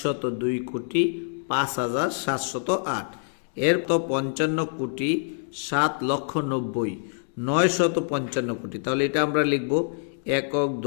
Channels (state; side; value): silent; right; digital silence